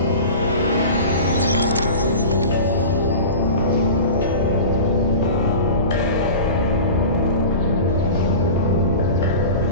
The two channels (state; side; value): inverted; both; correlation -0.34